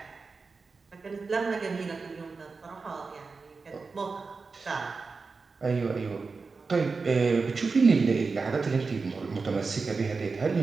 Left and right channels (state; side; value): quieter; left; 4.4 dB